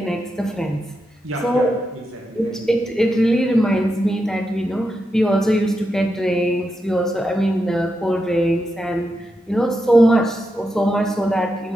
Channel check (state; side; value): normal; both; correlation 0.86